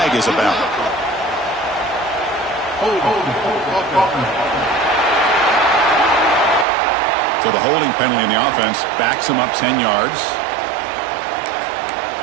is about. So the holding penalty in the offense backs him up 10 yards.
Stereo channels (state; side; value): drops out; left; at 6.7 s